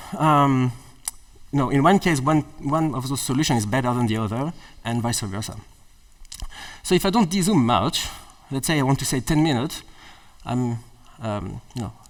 in one case, one of those solutions is better than the other, and vice versa. So if I don't de-zoom much, let's say I want to say 10 minutes,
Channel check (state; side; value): identical; both; correlation 1.00